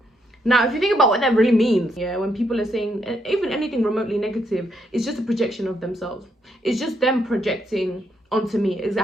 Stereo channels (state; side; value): normal; both; correlation 0.76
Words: Now, if you think about what that really means, yeah, when people are saying even anything remotely negative, it's just a projection of themselves. It's just them projecting onto me. It